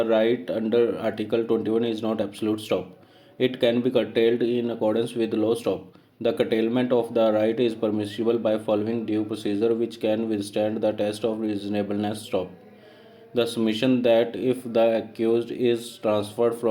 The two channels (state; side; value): identical; both; correlation 1.00